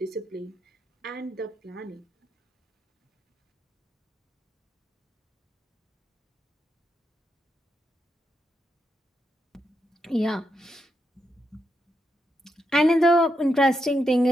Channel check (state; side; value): normal; both; correlation 0.83